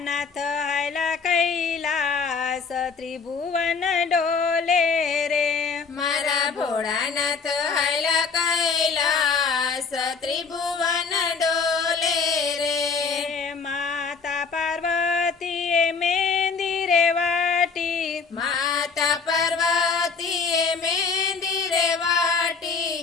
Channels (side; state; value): right; quieter; 5.1 dB